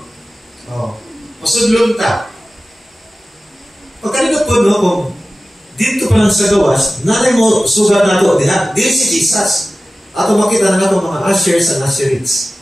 Oh. Masudlong ta. Pagkanikot po, no? Kung dito pa lang sa gawas, nanay mo sugat na to, diha? Di si Jesus. Ato makita na nato mga ushers and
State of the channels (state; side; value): normal; both; correlation 0.96